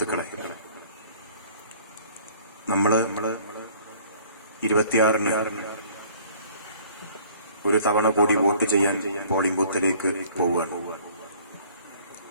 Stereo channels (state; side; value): inverted; both; correlation -0.53